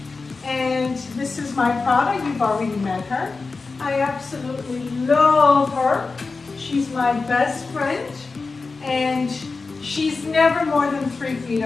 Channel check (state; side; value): quieter; right; 4.1 dB